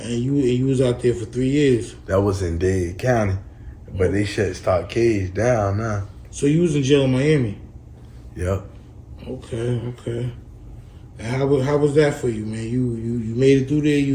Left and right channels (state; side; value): identical; both; correlation 1.00